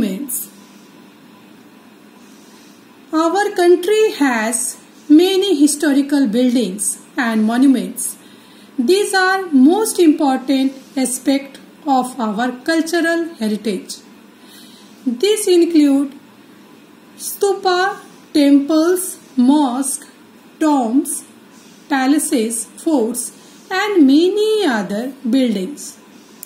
Our country has many historical buildings and monuments. These are most important aspects of our cultural heritage. These include stupa, temples, mosques, tombs, palaces, forts, and many other buildings.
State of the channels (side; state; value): both; identical; correlation 1.00